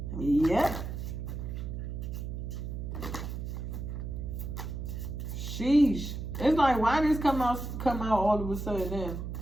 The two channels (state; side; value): noise; right; hum, 5 dB below the sound